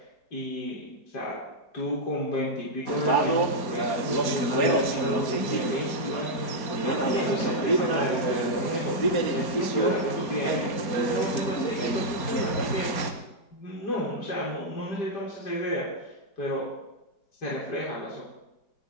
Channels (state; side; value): late; right; 4.3 ms